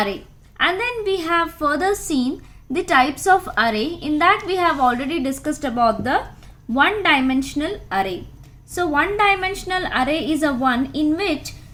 And then we have further seen the types of array. In that we have already discussed about the one-dimensional array. So one-dimensional array is a one in which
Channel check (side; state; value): both; identical; correlation 1.00